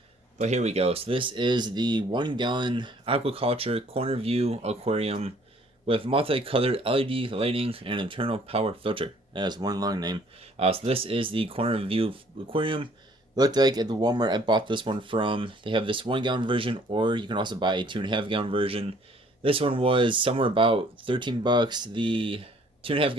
but here we go. So this is the 1 gallon Aquaculture corner view aquarium with multicolored LED lighting and internal power filter. That has one long name. So this is the corner view aquarium. Looked like at the Walmart I bought this one from. They have this 1 gallon version, or you can also buy a 2.5 gallon version. This one was somewhere about 13 bucks. The 2.5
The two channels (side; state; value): both; normal; correlation 0.59